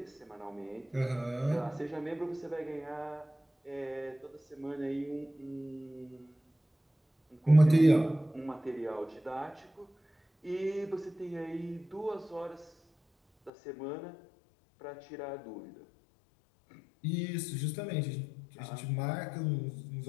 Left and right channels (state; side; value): drops out; right; at 13.5 s